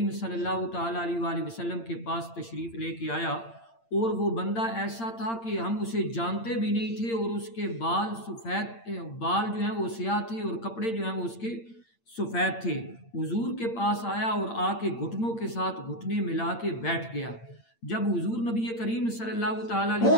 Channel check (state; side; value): late; right; 8.8 ms